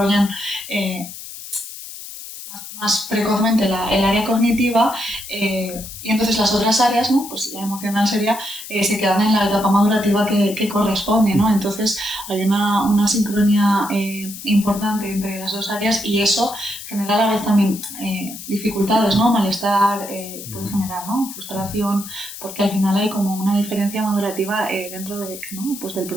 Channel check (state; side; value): noise; left; hiss, 12 dB below the sound